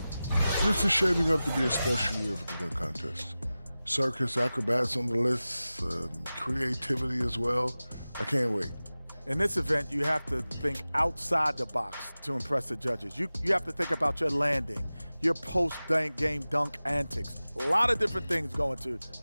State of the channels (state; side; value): inverted; both; correlation -0.96